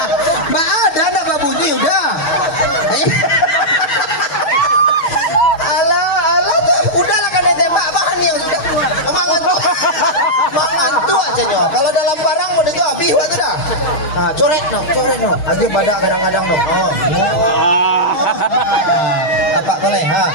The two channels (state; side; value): late; right; 6.4 ms